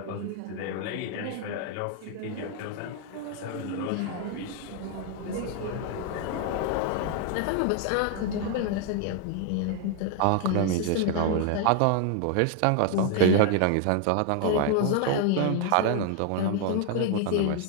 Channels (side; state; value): both; different; correlation 0.00